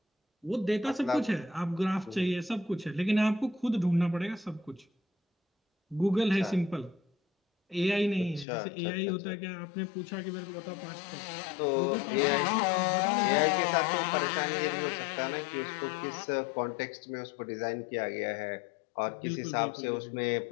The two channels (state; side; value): drops out; right; at 8.5 s